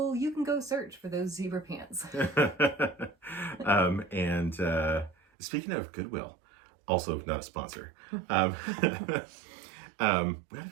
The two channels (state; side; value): drops out; left; at 5.2 s